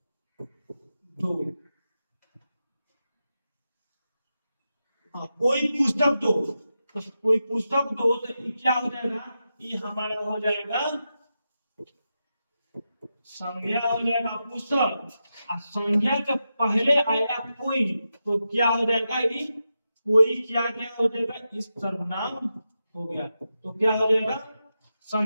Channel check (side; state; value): both; inverted; correlation -0.89